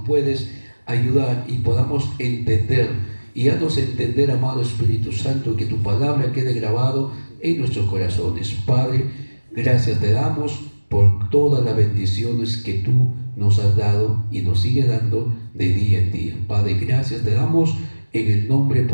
puedes ayudar y podamos entender, y haznos entender, amado Espíritu Santo, que tu palabra quede grabado en nuestros corazones. Padre, gracias te damos por todas las bendiciones que tú nos has dado y nos sigue dando de día en día. Padre, gracias te damos en el nombre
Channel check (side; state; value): both; inverted; correlation -1.00